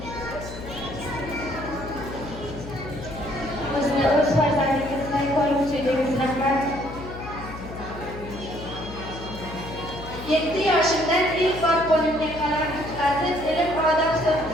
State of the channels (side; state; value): left; noise; hum, 11 dB below the sound